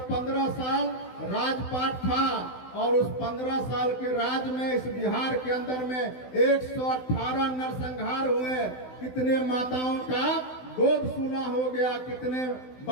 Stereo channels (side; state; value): right; late; 16 ms